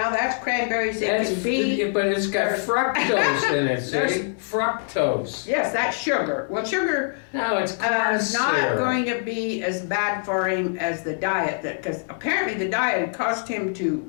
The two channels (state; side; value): silent; right; digital silence